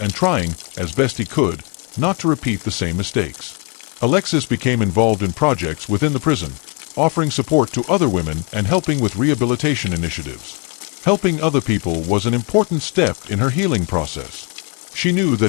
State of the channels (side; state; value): right; quieter; 34.3 dB